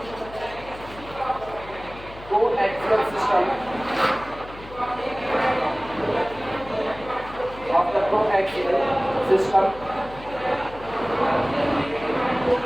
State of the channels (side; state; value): left; noise; hum, 17 dB below the sound